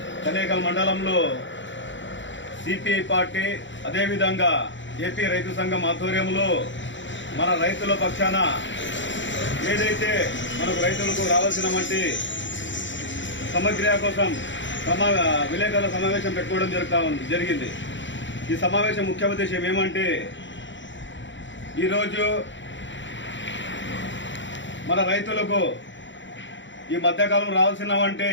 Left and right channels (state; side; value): late; right; 0.54 ms